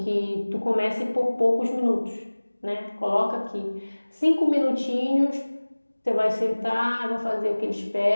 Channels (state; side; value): inverted; both; correlation -1.00